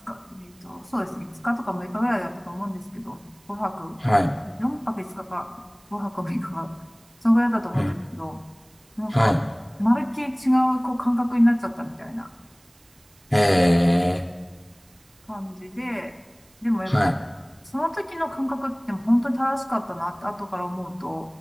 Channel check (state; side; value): noise; right; hiss, 30 dB below the sound